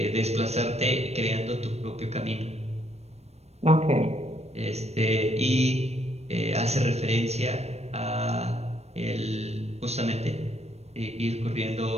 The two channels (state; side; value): late; left; 0.31 ms